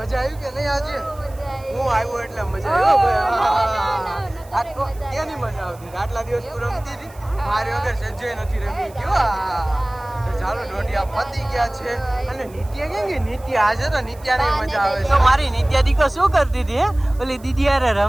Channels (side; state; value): right; noise; hiss, 25 dB below the sound